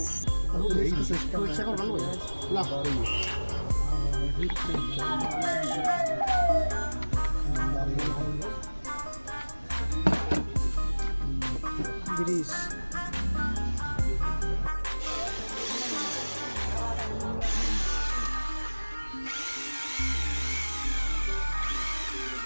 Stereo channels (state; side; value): inverted; both; correlation -1.00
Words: सिस्टम चेक कर लो ला ग्रीस